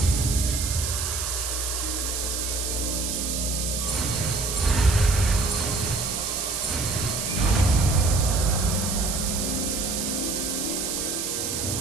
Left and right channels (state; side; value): noise; right; hiss, 2 dB below the sound